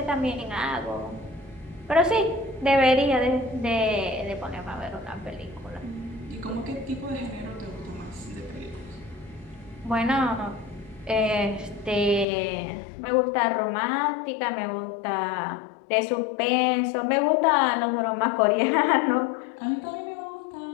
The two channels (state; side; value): drops out; right; at 12.2 s